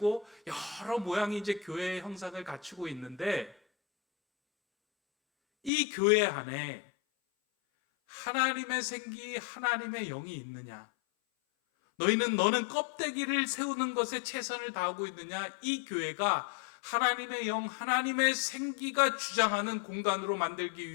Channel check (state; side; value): drops out; right; at 5.7 s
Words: 여러 모양이 이제 교회의 형상을 갖추고 있는데, 이 교회 안에 하나님의 생기, 하나님의 영이 있느냐? 너는 껍데기를 세우는 것에 최선을 다하고 있느냐? 이 교회가 하나님의 영, 하나님의 생기가 주장하는 공간으로 만들기